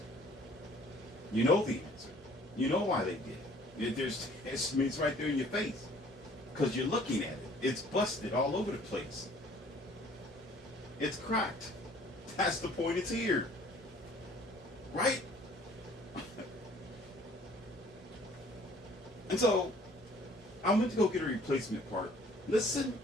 You know the answer. You know why they did it. It's right there in your face. Because you're looking at it. It's busted all over the place. It's cracked. That's the point, it's here. Right? And so, I went to go get a replacement part. Listen,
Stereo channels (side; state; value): both; normal; correlation 0.55